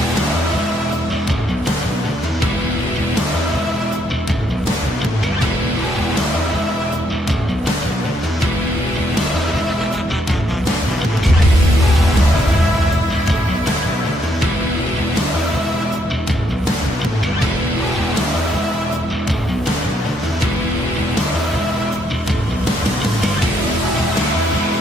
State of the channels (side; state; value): both; normal; correlation 0.73